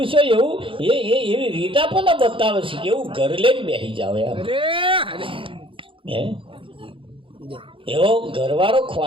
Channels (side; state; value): left; late; 0.25 ms